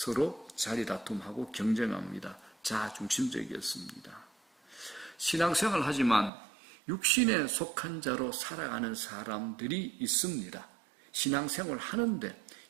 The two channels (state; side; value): drops out; left; at 6.3 s